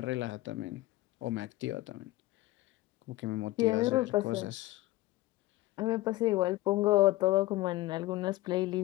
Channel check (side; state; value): right; quieter; 18.1 dB